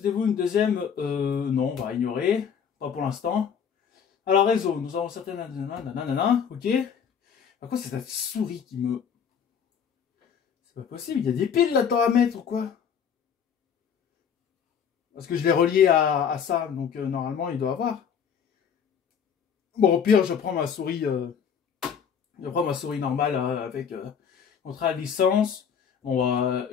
une deuxième? Non, on va ignorer. Pas pour l'instant. Alors, réseau, nous avons certaines. Ok. Par contre, c'est cette souris qui me. C'est pas possible, il y a des piles là-dedans à mettre ou quoi? Parce que je l'ai relié à ça, donc normalement il doit avoir. Bon, au pire, je prends ma souris normale avec contrat de licence.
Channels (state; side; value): quieter; right; 7.4 dB